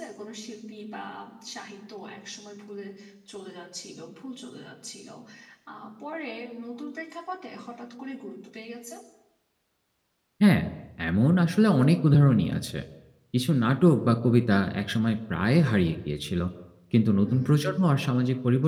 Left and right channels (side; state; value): both; identical; correlation 1.00